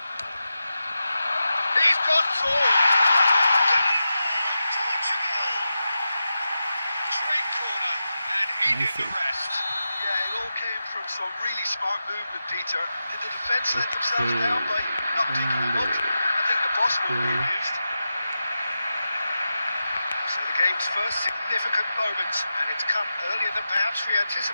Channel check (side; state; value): both; inverted; correlation -0.91